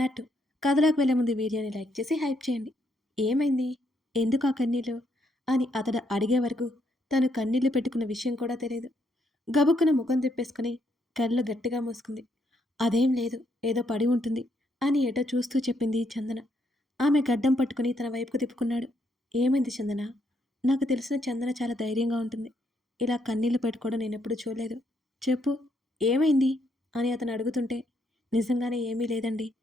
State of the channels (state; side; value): normal; both; correlation 0.75